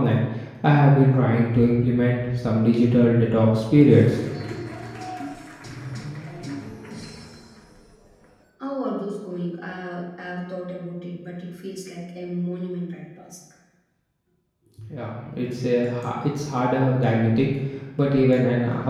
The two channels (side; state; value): both; identical; correlation 1.00